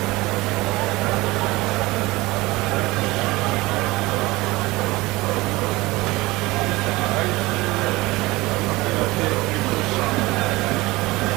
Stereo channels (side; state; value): left; quieter; 20.9 dB